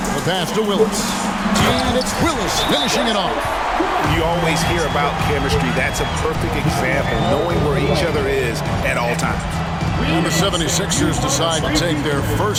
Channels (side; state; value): both; identical; correlation 1.00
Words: The pass to Willis. And it's Willis finishing it off. You always hear about chemistry. That's a perfect example, knowing where each other is at all times. And the 76ers decide to take their